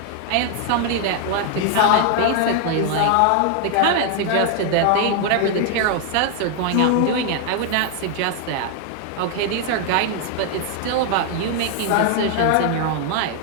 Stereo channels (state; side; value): different; both; correlation 0.00